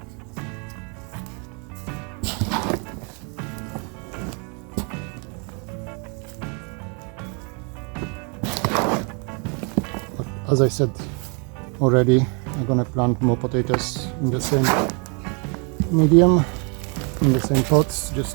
But as I said already, I'm gonna plant more potatoes in the same medium, in the same pots,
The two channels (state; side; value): quieter; left; 35.7 dB